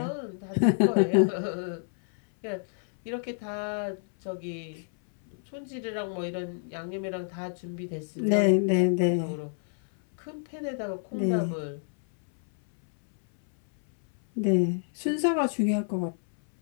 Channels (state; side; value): silent; right; 58 dB below the other